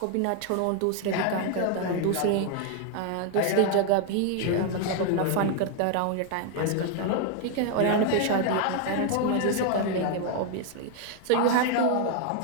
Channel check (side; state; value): both; different; correlation 0.00